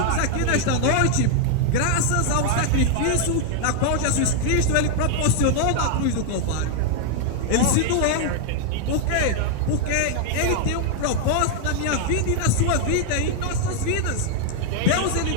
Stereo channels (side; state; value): both; different; correlation 0.00